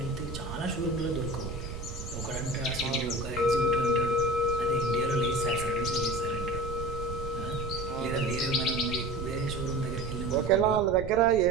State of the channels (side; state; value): right; noise; rumble, 8 dB below the sound